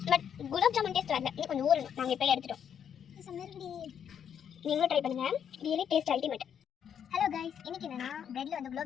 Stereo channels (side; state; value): right; quieter; 8.4 dB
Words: பட் குலாப் ஜாமுன் டேஸ்ட் வரல. இன்னும் கொஞ்சம் ஊறணும். நாங்கள் இப்போ எடுத்துட்டோம். நீங்களும் ட்ரை பண்ணுங்கள். Really taste ultimate. Hello guys, இன்னைக்கு என்னன்னா பிரெட்ல வந்து